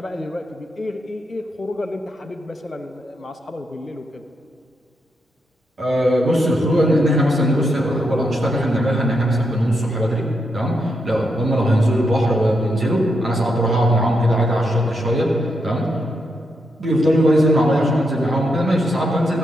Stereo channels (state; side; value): normal; both; correlation 0.81